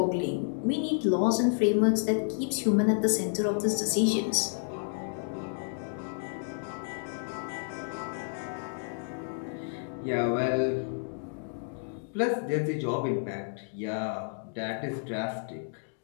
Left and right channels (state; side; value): silent; right; digital silence